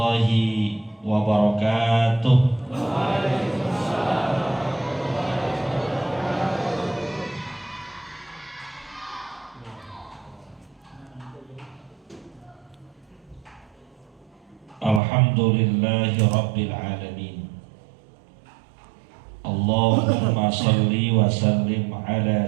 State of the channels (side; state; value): left; drops out; at 15.0 s